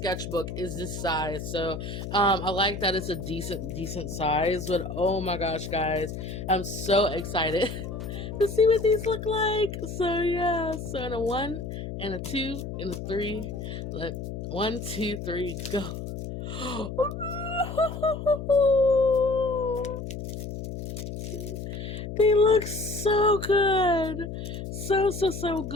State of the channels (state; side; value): noise; left; hum, 7 dB below the sound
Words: is this size, so I like that it's a decent size. But oh my gosh, guys, I'm so excited to see what these look like. So yeah, so in a 1 and a 2 and a 3, let 1, 2, 3, go. They look so good. So